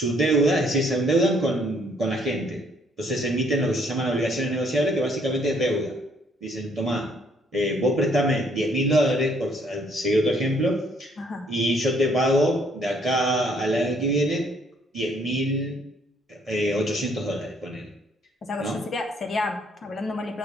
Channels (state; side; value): normal; both; correlation 0.66